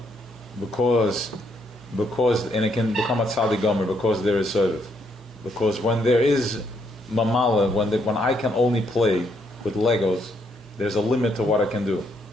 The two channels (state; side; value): normal; both; correlation 0.73